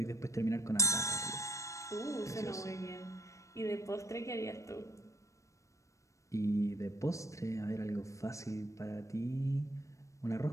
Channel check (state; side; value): late; right; 0.15 ms